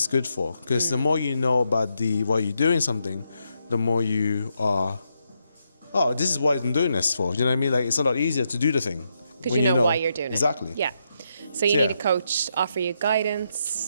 good for? Because the more you know about why you're doing something, the more you are. Oh, this is what I'm doing this for. You know what I mean? Like, it's a lot easier to do the thing Because when you know why you're doing exactly. it. Yeah. So you Yeah. need a coach to offer you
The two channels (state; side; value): inverted; both; correlation -0.81